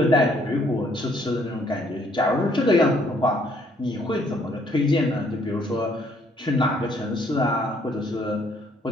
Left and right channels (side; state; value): both; normal; correlation 0.66